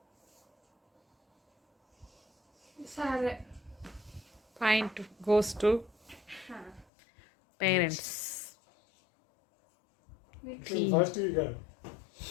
సరే. Point goes to parents. First కాదు.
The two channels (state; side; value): drops out; right; at 6.9 s